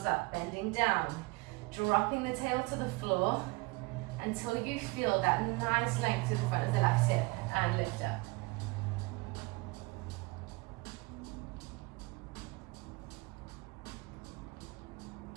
up, bending down, dropping the tail to the floor until you feel that nice length to the front of the left hip, and lift up.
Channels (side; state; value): left; quieter; 25.0 dB